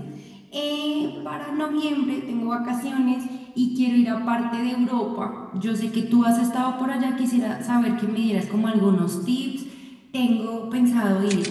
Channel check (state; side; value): identical; both; correlation 1.00